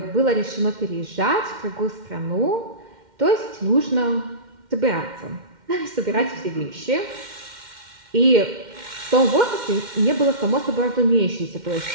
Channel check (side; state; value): left; late; 2.1 ms